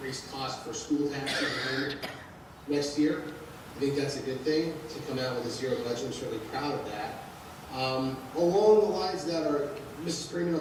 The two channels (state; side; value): identical; both; correlation 1.00